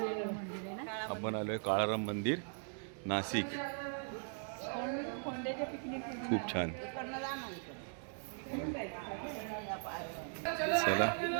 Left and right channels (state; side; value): silent; left; 52 dB below the other